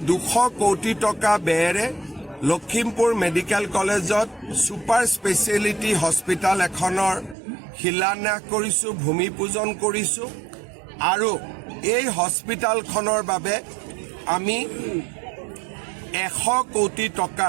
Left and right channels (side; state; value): left; drops out; at 7.4 s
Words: 200 কোটি টকা ব্যয়েৰে লখিমপুৰ মেডিকেল কলেজত ছুপাৰ স্পেচিয়েলিটি হস্পিটেল এখনৰ শিলান্যাস কৰিছোঁ, ভূমি পূজন কৰিছোঁ। আৰু এই হস্পিটেলখনৰ বাবে আমি 100 কোটি